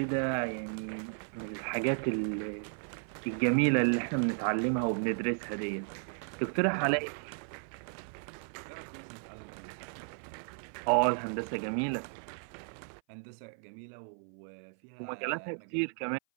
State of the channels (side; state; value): left; silent; 55 dB below the other